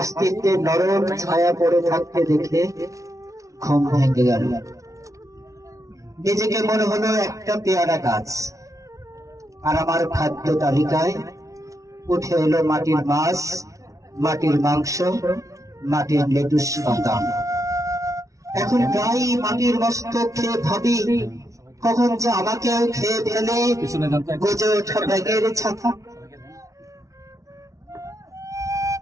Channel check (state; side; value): late; left; 0.16 ms